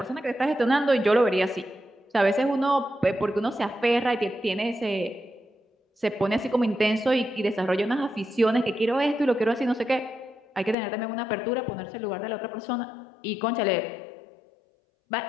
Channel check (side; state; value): right; drops out; at 10.8 s